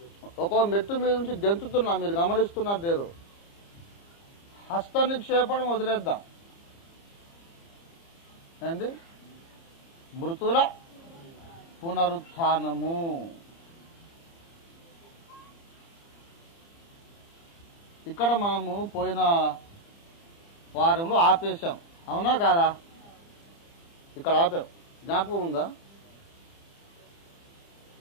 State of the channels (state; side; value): late; right; 30 ms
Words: ఒక్కొక్క మెట్టు మీద నుంచి గెంతుతున్నా. మీరు గమనిస్తున్నారు లేదు? హస్త నిక్షేపణం వదిలేద్దాం అండి. మృతుల పునరుత్థానము. ఇక్కడ మనము పోయిన వారంలో ఆపేశాం, అవునా కాదా? ఇక్కడ ఆపాం, జ్ఞాపకం ఉందా?